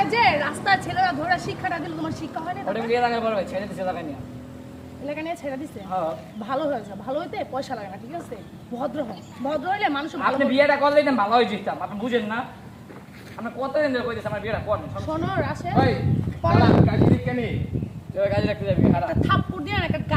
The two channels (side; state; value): both; identical; correlation 1.00